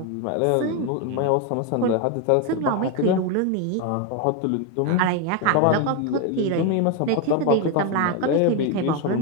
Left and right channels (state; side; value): different; both; correlation 0.02